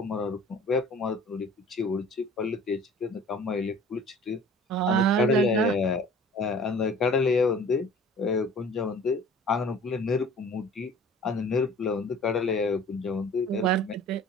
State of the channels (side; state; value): both; normal; correlation 0.47